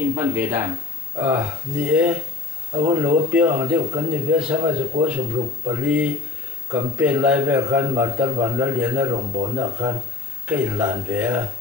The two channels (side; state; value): right; quieter; 4.1 dB